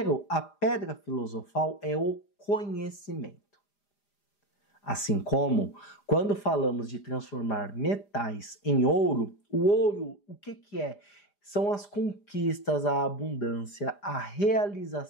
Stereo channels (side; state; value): right; late; 5.0 ms